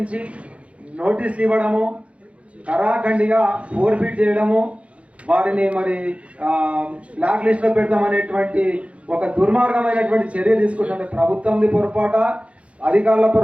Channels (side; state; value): left; late; 0.063 ms